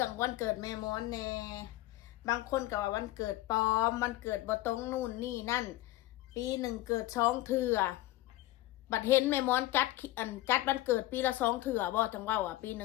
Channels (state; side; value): quieter; right; 16.7 dB